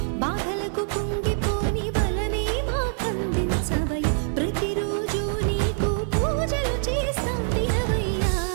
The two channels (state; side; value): silent; left; 62 dB below the other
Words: బాధలకు కుంగిపోని బలమే మాకందించవయ్య ప్రతిరోజు నీకు పూజలు చేస్తాం దినవయ్యా